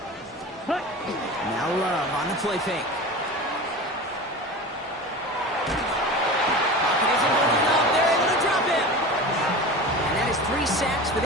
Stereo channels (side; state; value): both; normal; correlation 0.32